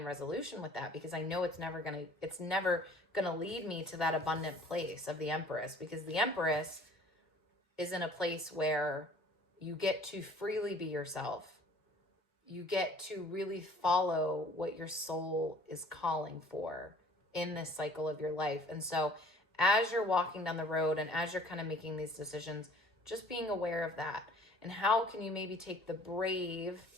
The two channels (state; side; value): normal; both; correlation 0.53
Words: resolution with that, because I know it's never gonna lead me to that abundant place of the Empress, because the Empress is in a place where you get to freely be yourself. You get to really follow what your soul is calling for in this cycle of your life. And so as you're walking down the road and as you're kind of making these decisions, just being aware of that. And how can you maybe take the